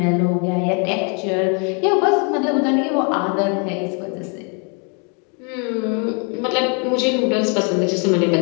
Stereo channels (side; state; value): right; quieter; 36.7 dB